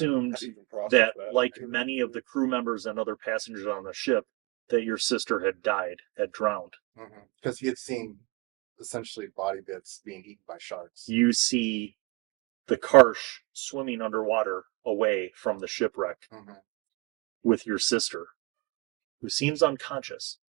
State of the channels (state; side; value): quieter; left; 24.3 dB